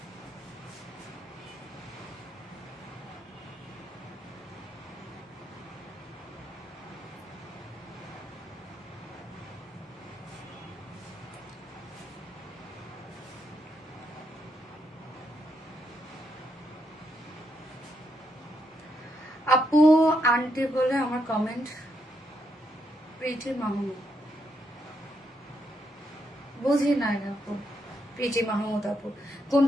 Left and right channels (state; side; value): normal; both; correlation 0.79